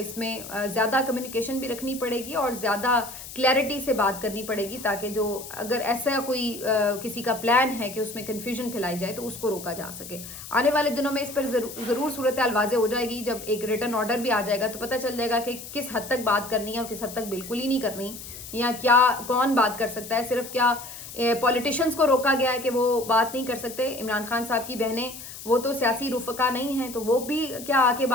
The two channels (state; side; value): noise; left; hiss, 12 dB below the sound